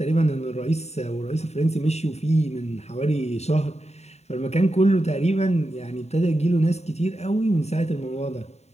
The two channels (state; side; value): late; right; 0.32 ms